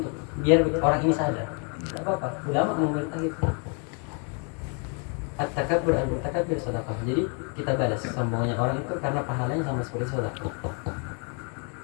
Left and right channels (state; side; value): quieter; right; 38.4 dB